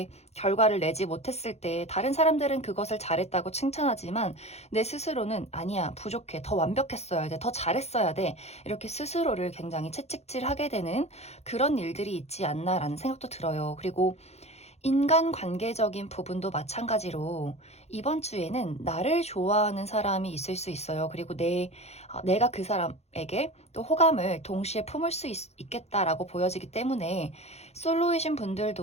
결과를 내지 못했을 때 다른 사람들은 그것을 잘했다고 칭찬하지만 내 스스로는 아니야, 부족해, 더 완벽했어야 돼, 더 잘했어야 돼, 이렇게 스스로를 굉장히 채찍질하게 되는 그런 일들이 있지 않나라는 생각도 들어요. 그리고 인간관계적인 부분도 마찬가지로 이번 주에는 나를 좋아하는 사람이 있을 수 있어요. 그리고 내가 그 사람에게 또 호감을 동시에 품을 수 있겠다라고 보여지기 때문에, 솔로이신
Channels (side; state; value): right; late; 0.31 ms